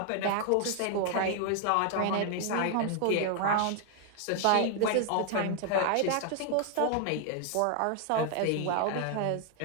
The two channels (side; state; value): both; different; correlation 0.00